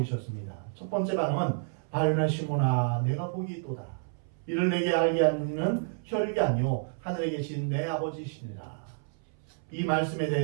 첫 번째 반응은 바요나 시몬아 내가 복이 있도다. 이를 내게 알게 하는 혈육이 아니요 하늘에 계신 내 아버지시니라. 이 말씀에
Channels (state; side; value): silent; left; 58 dB below the other